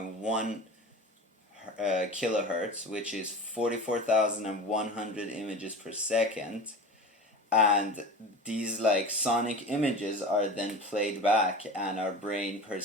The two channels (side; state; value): both; normal; correlation 0.33